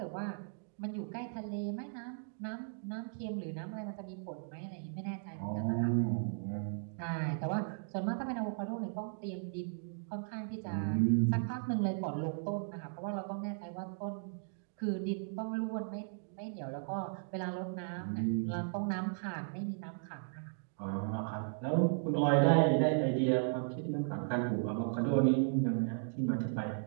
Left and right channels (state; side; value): silent; left; digital silence